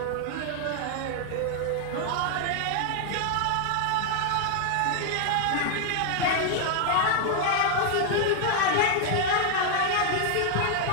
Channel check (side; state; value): both; different; correlation 0.00